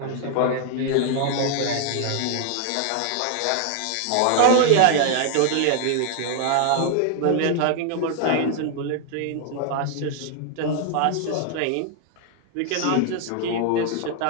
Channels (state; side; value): different; both; correlation 0.00